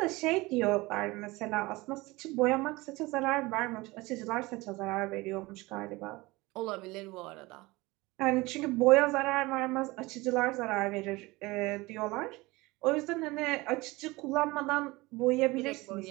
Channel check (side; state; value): left; quieter; 21.9 dB